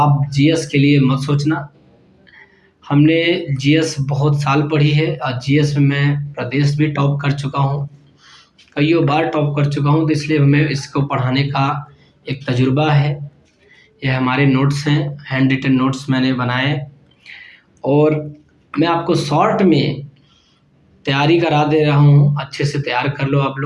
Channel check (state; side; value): identical; both; correlation 1.00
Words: GS के लिए मत सोचना। हमने GS बहुत साल पढ़ी है और GS में मैं प्रदेश भी टॉप कर चुका हूँ, कईयों बार टॉप कर चुका हूँ। तो इसलिए हमें इसको पढ़ाने का एक तजुर्बा है। ये हमारे नोट्स हैं, हैंड रिटन नोट्स मैंने बनाए और मैं आपको शॉर्ट में तैयारी करा दे रहा हूँ। अच्छे से तैयार कर लो आप